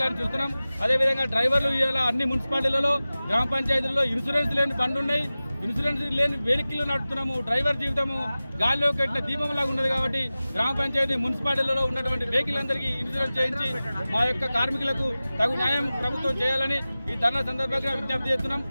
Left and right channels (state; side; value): inverted; both; correlation -0.96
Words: చూస్తున్నాం. అదేవిధంగా డ్రైవర్లు ఇవాళ అన్ని మున్సిపాలిటీలలో, గ్రామ పంచాయతీలలో ఇన్సూరెన్స్ లేని బండ్లు ఉన్నాయి. ఇన్సూరెన్స్ లేని వెహికల్ నడుపుతున్నాము. డ్రైవర్ జీవితము గాలిలో కట్టిన దీపంలాగా ఉన్నది. కాబట్టి గ్రామ పంచాయతీ, మున్సిపాలిటీలలో ఉన్నటువంటి వెహికల్ అందరికీ ఇన్సూరెన్స్ చేయించి మా యొక్క కార్మికులకు తగు న్యాయం ప్రభుత్వం చేయాలని ఈ ధర్నా సందర్భంగా విజ్ఞప్తి చేస్తున్నాం.